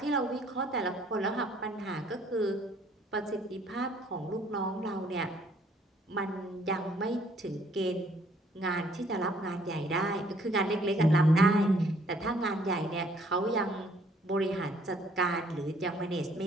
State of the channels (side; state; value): both; normal; correlation 0.62